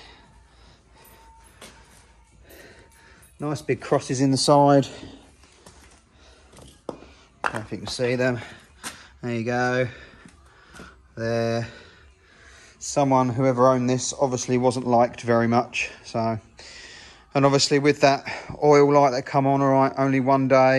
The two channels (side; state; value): both; identical; correlation 1.00